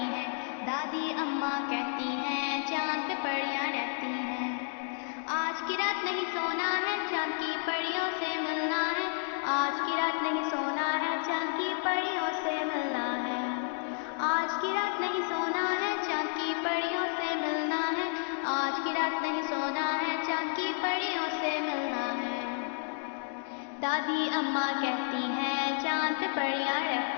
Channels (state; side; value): silent; right; 57 dB below the other